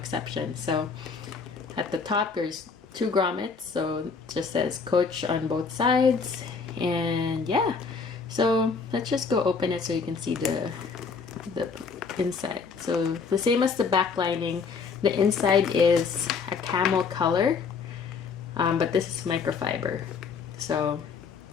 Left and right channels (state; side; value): quieter; right; 5.3 dB